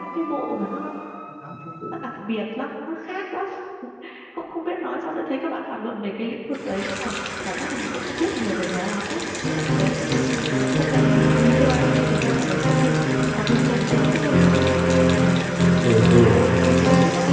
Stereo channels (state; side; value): identical; both; correlation 1.00